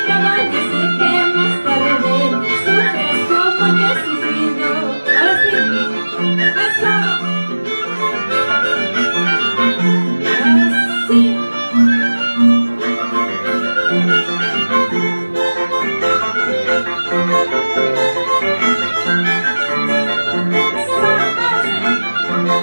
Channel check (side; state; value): both; inverted; correlation -1.00